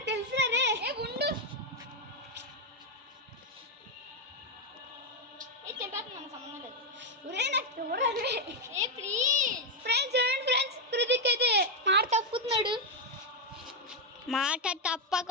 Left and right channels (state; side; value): normal; both; correlation 0.03